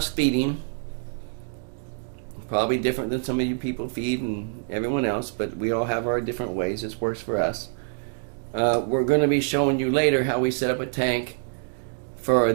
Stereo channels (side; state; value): left; silent; digital silence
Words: feeding. Probably different than some of you people feed and everyone else, but we all have our different ways. This works for us. We're going to be showing you later how we set up a tank for